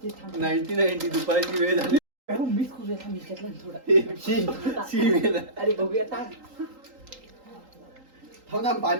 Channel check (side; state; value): left; late; 3.8 ms